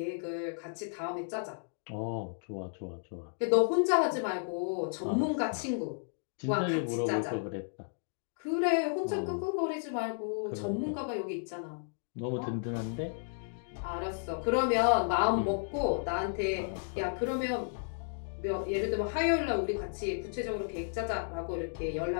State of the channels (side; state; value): right; silent; digital silence